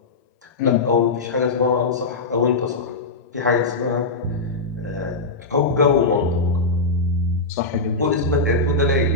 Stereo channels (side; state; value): right; quieter; 3.4 dB